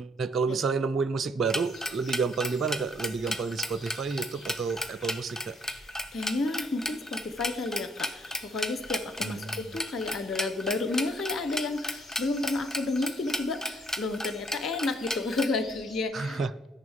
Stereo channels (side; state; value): both; normal; correlation 0.64